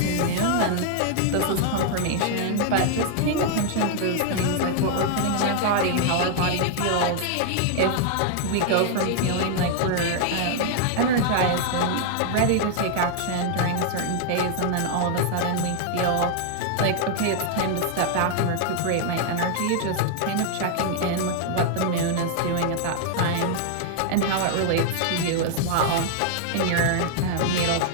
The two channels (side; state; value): both; different; correlation 0.00